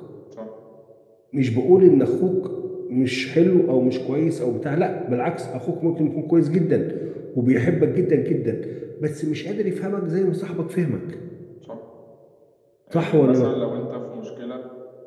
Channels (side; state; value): both; identical; correlation 1.00